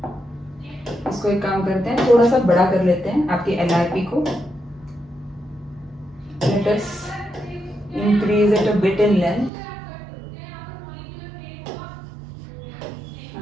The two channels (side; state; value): left; drops out; at 9.5 s